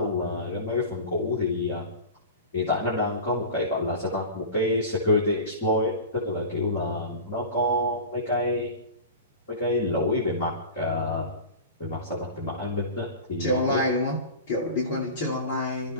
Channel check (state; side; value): inverted; both; correlation -0.32